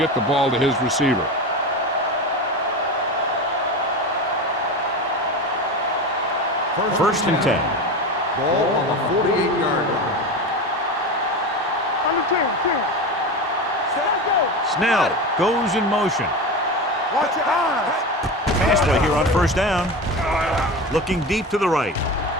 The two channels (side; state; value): both; normal; correlation 0.25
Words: the ball to his receiver. First and 10. Ball on the 48-yard line. On the 10. Set, go. Snell goes in motion. Watch your eyes. Pass play here on 1st down. Looking deep to the right.